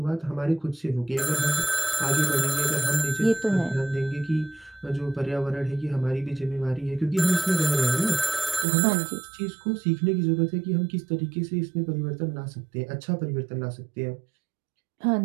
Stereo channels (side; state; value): left; drops out; at 8.7 s